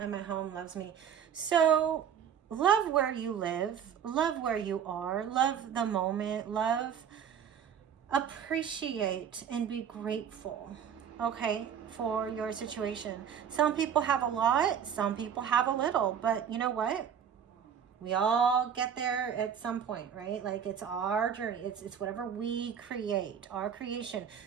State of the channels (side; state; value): left; quieter; 8.2 dB